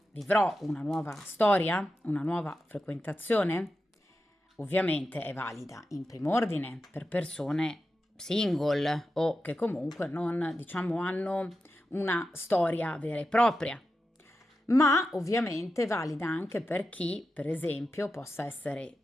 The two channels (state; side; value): normal; both; correlation 0.90